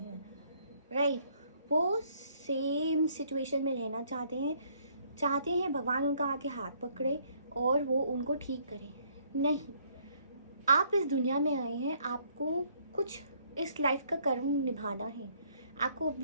हैं, राइट। वो सेम सिचुएशन में रहना चाहते हैं भगवान उनका आके हाथ पकड़े और वो उनको ठीक करें। नहीं, आप इस दुनिया में आए हैं, आपको कुछ इस लाइफ का कर्म निभाना है। आपको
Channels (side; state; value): both; inverted; correlation -0.65